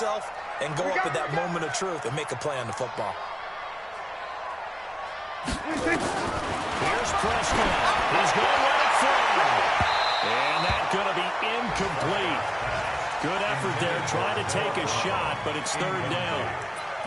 and go up at that moment of truth and make a play on the football. Here's Prescott. He's going to let it fly. And that's going to be incomplete. Good effort there, trying to take a shot, but it's third down.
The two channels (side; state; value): both; identical; correlation 1.00